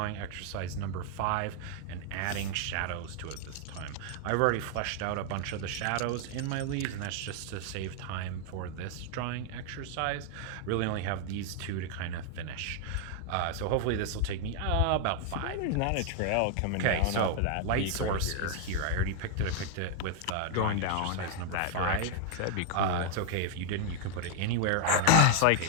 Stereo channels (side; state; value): both; different; correlation 0.00